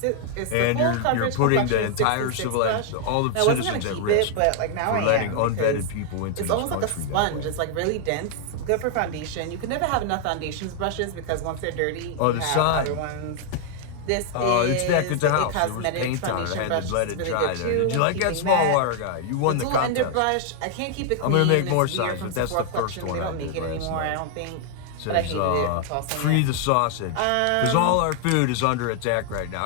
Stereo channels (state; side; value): different; both; correlation 0.00